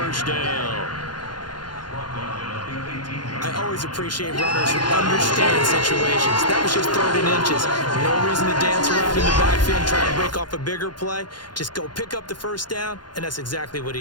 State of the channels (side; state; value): right; late; 0.71 ms